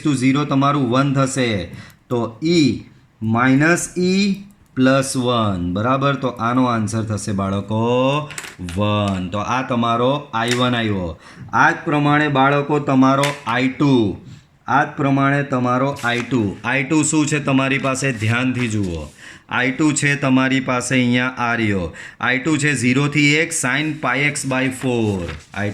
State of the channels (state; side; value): identical; both; correlation 1.00